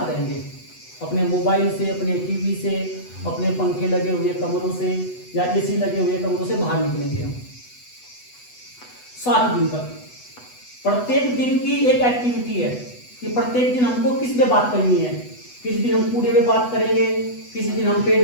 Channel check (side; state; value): right; late; 8.1 ms